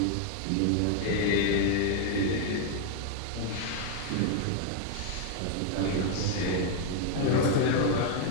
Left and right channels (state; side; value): different; both; correlation 0.00